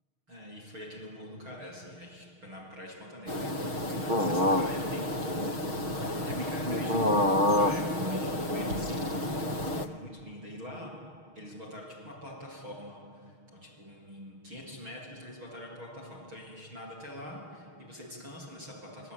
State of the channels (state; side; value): late; left; 6.4 ms